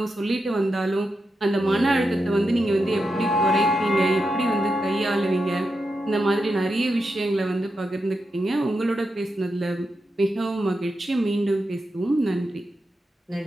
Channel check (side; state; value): both; normal; correlation 0.87